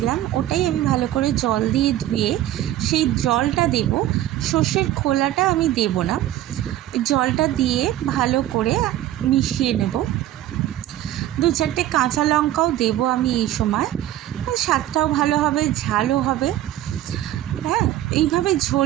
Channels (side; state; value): left; quieter; 13.4 dB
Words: ওটাই আমি ভালো করে জল দিয়ে ধুয়ে সেই জলটা দেব। সর্ষের খোলাটা আমি দেব না, জলটা দিয়ে ভালো করে মিশিয়ে নেব। 2-4টে কাঁচা লঙ্কাও দেব আমি এই সময়, স্বাদটাও ভালো হবে, ঝালও হবে। হ্যাঁ, এইভাবে